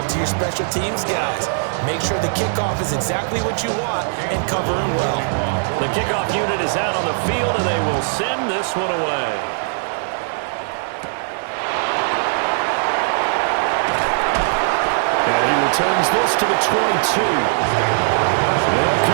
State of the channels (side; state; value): left; silent; digital silence